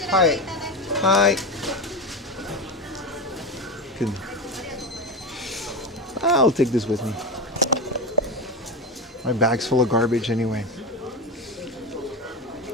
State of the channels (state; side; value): normal; both; correlation 0.19